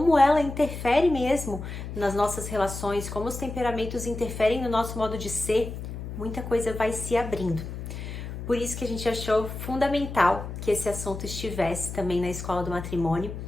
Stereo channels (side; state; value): left; noise; hum, 8 dB below the sound